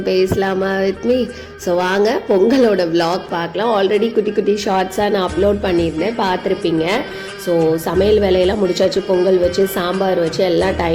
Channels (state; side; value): identical; both; correlation 1.00